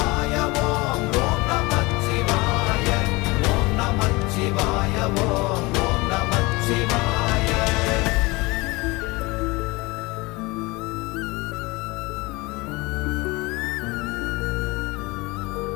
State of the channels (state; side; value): quieter; right; 23.7 dB